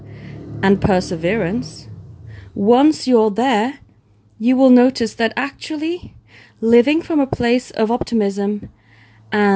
and perseverance, once you're there, you will notice that actually living from a place of optimism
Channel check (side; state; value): both; identical; correlation 1.00